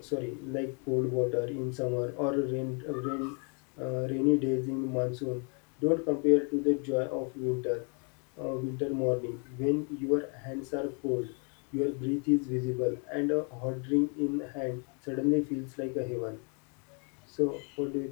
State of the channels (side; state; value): right; quieter; 38.3 dB